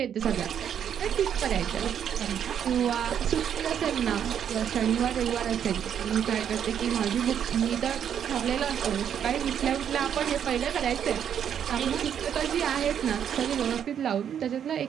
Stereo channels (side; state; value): left; quieter; 8.8 dB